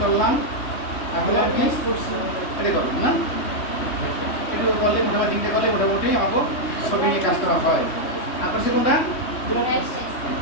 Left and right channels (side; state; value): right; late; 3.1 ms